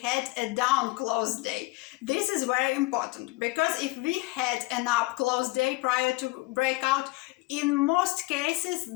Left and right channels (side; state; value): right; quieter; 22.3 dB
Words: a down close day. This is very important, because if we had an up close day prior to breakout, in most